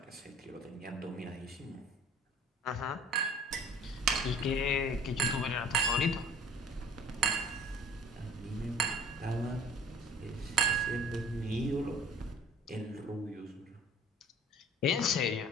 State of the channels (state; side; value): normal; both; correlation 0.47